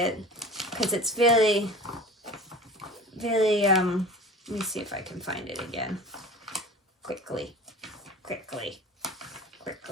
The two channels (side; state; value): both; normal; correlation 0.39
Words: because it's very. Let me see if I can find it again. Quickly.